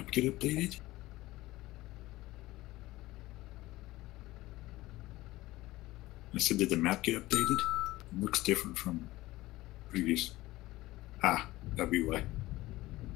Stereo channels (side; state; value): right; quieter; 18.0 dB